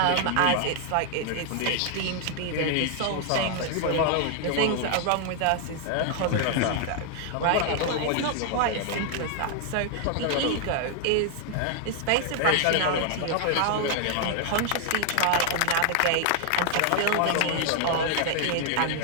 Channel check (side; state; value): both; different; correlation 0.00